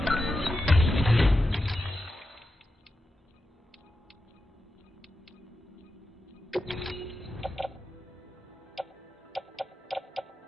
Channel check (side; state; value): both; normal; correlation 0.90